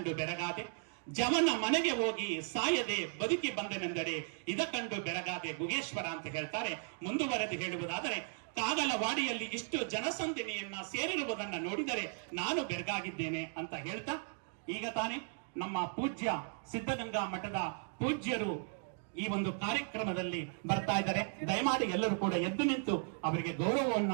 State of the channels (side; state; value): left; silent; 54 dB below the other